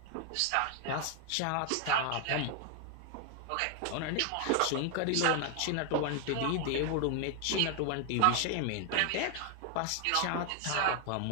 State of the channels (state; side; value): different; both; correlation 0.00